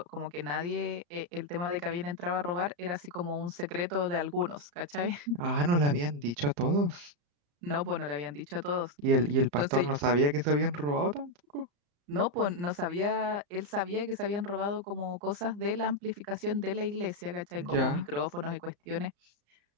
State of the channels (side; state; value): left; late; 34 ms